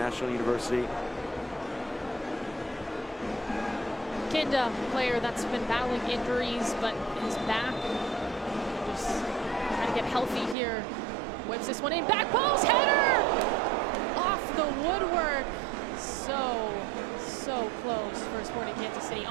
University. Kinda, player that's been battling injuries, but is back and just trying to get healthy here. Whips this one in, back post, header! Off the woodwork. So close for Sporting Kansas City.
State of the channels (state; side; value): drops out; left; at 10.6 s